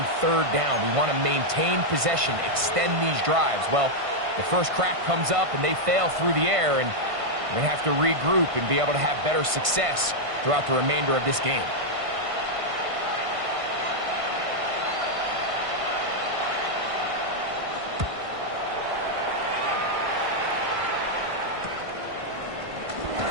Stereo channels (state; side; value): late; left; 1.5 ms